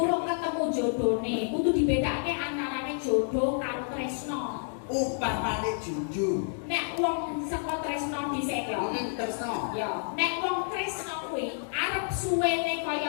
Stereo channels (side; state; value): right; silent; digital silence